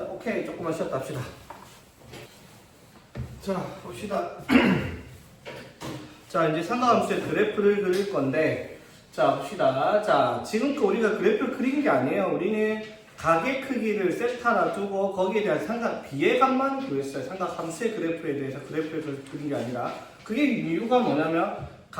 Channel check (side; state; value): both; identical; correlation 1.00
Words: 오케이. 조금만 쉬었다 합시다. 자, 봅시다. 자, 이제 삼각함수의 그래프를 그릴 건데, 자, 봅시다. 자, 지금껏 우리가 그래프를 그린 게 아니에요. 우리는 가계 크기를 세타라 두고 거기에 대한 삼각 비례값만 구했어요. 삼각함수의 그래프에 대해서 그래프를 그린 게 아니라. 그게 이유가 뭐냐면,